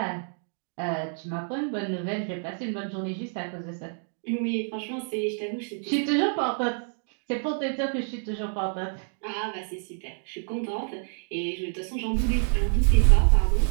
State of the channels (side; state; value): left; silent; 59 dB below the other